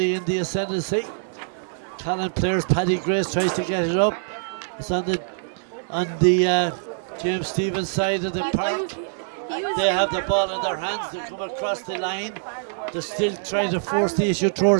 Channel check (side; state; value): left; silent; 63 dB below the other